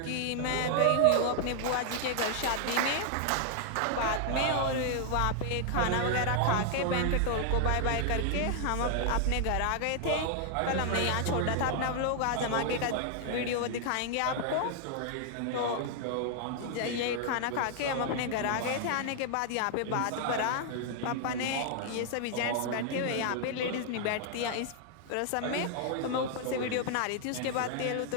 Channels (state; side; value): different; both; correlation 0.00